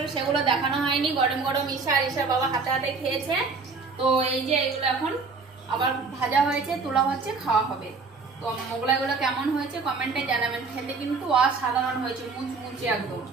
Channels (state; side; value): quieter; left; 4.4 dB